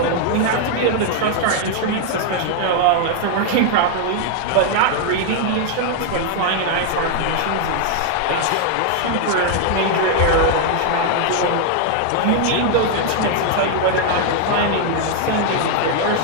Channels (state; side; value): different; both; correlation 0.00